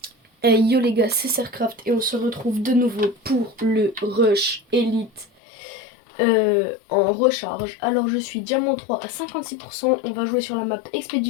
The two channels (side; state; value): right; drops out; at 5.2 s